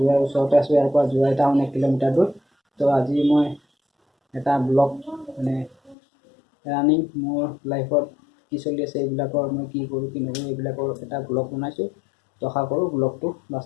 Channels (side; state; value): right; drops out; at 6.0 s